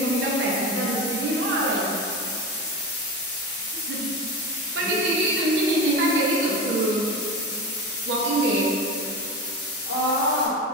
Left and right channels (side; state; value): both; normal; correlation 0.25